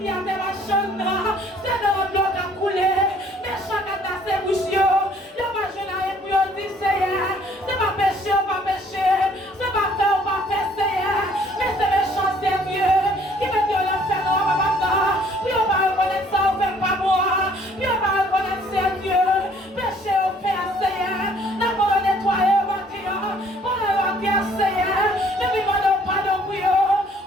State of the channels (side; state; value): both; normal; correlation 0.60